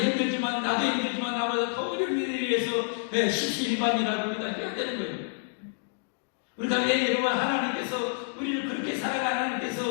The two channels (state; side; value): silent; right; digital silence